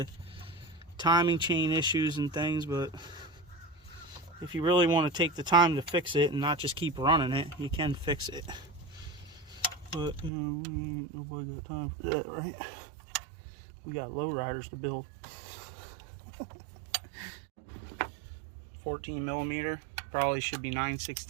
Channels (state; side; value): drops out; left; at 10.3 s